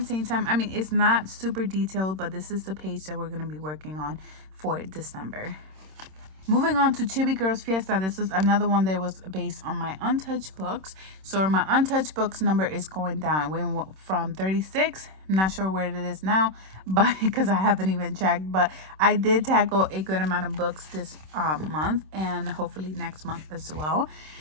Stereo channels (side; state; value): left; late; 26 ms